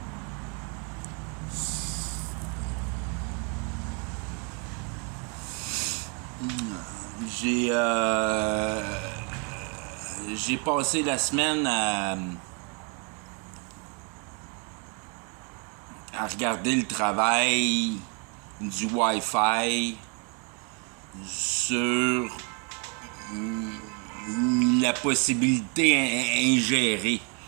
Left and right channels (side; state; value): left; quieter; 35.2 dB